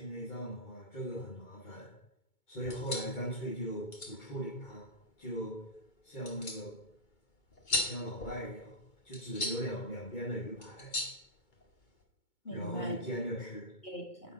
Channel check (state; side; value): late; right; 2.2 ms